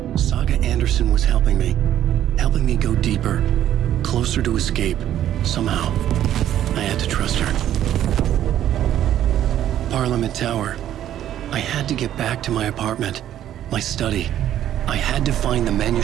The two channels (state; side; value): quieter; left; 11.5 dB